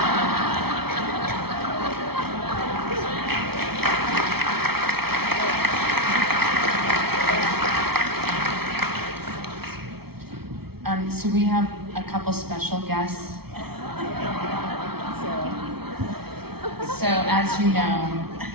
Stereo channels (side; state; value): left; late; 0.95 ms